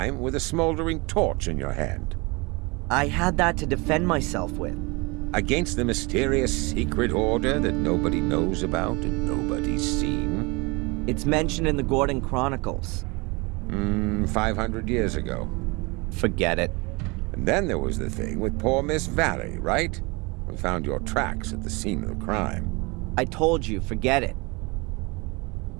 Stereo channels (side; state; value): left; quieter; 26.8 dB